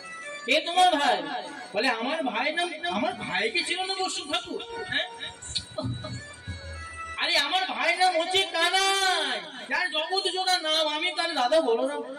কে তোমার ভাই? বলে আমার ভাই নাম, আমার ভাইকে ছিল না বৈষ্ণব ঠাকুর? আরে আমার ভাই নাম হচ্ছে কানাই, যার জগৎ জোড়া নাম, আমি তার দাদা বলো না।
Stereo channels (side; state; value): both; identical; correlation 1.00